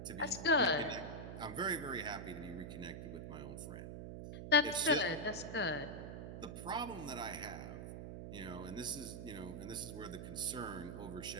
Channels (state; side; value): noise; right; hum, 8 dB below the sound